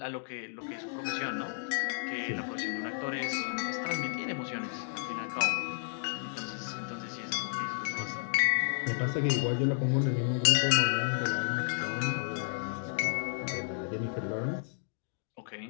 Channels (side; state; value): right; silent; digital silence